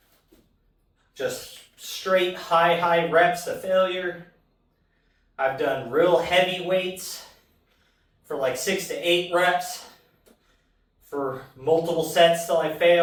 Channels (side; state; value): both; identical; correlation 1.00